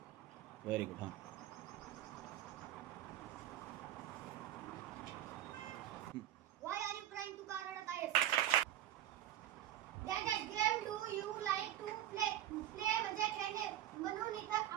Very good. हां, व्हाय आर यू क्राइंग? तू का रडत आहेस? Dash dash game do you like to play? Play म्हणजे खेळणे, म्हणून इथं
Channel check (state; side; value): quieter; left; 12.5 dB